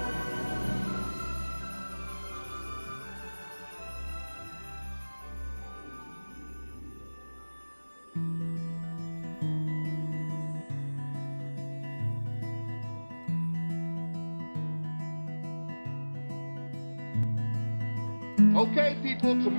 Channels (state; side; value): inverted; both; correlation -1.00